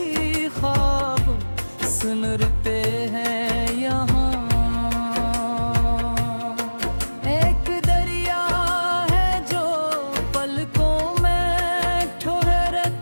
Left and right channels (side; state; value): both; inverted; correlation -1.00